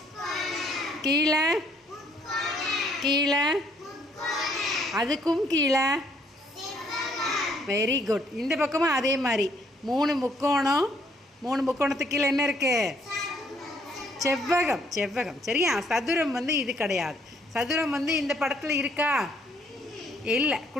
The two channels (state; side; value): normal; both; correlation 0.67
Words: கீழே, கீழே, அதுக்கும் கீழே, வெரி குட். இந்த பக்கமும் அதே மாதிரி 3 முக்கோணம். 3 முக்கோணத்துக்கு கீழே என்ன இருக்குது? செவ்வகம். செவ்வகம், சரியா? சதுரம் இது கிடையாது. சதுரம் இந்த படத்தில் இருக்கா? இல்லை,